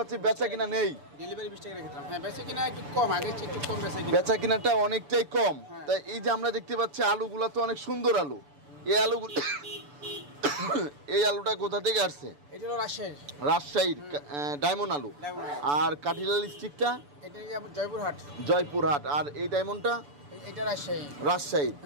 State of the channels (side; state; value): left; late; 6.9 ms